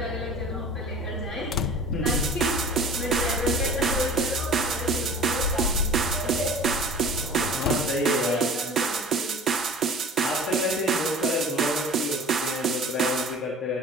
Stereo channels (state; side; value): normal; both; correlation 0.43